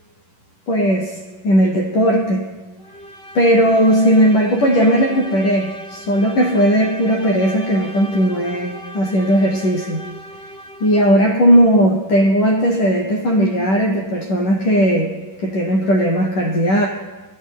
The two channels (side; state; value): right; late; 10 ms